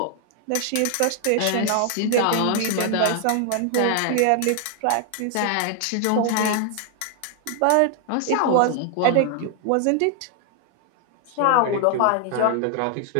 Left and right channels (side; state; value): both; different; correlation 0.00